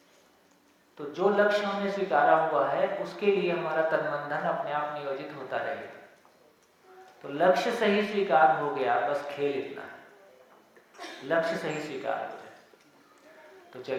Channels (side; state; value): both; identical; correlation 1.00